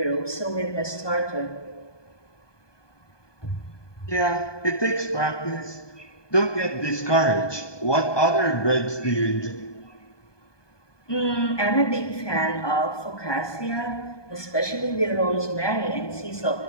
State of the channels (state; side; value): late; right; 1.2 ms